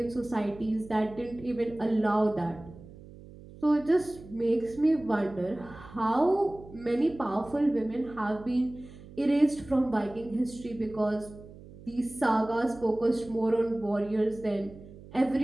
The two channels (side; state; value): right; noise; hum, 18 dB below the sound